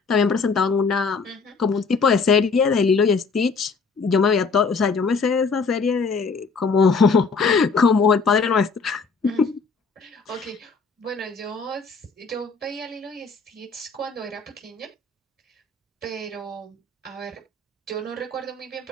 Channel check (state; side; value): quieter; right; 4.6 dB